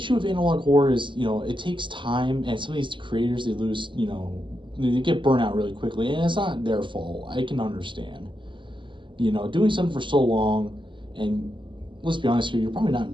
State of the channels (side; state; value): left; late; 0.24 ms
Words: of analog horror is, you know, it takes time, and some of these creators, they lose, you know, they get burnt out really quickly, and it's not their fault. I can understand. You know, doing something for so long, and let's be honest here, you're probably